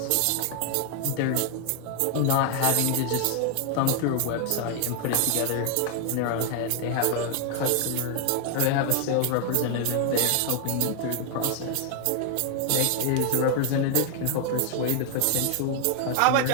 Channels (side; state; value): both; different; correlation 0.00